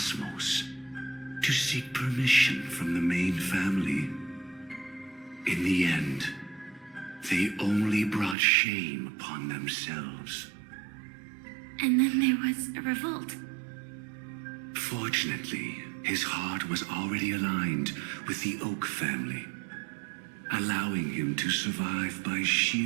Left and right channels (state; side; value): drops out; left; at 8.3 s